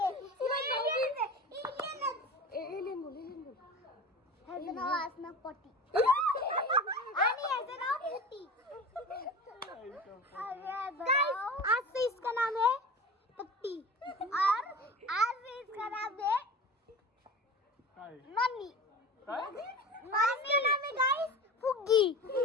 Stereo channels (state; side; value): normal; both; correlation 0.33